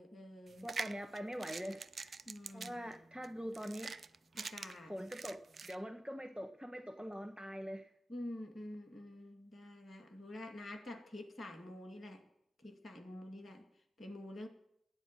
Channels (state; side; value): normal; both; correlation 0.94